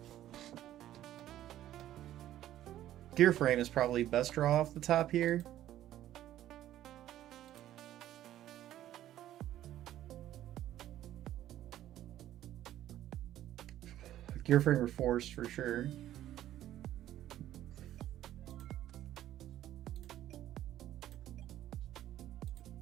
Gear frame is probably best draw off the top here. Gear frame or force for sure.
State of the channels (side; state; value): left; quieter; 12.8 dB